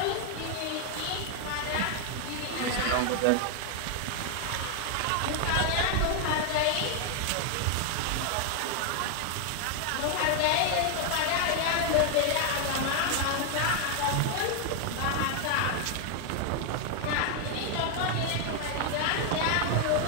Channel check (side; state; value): both; different; correlation 0.00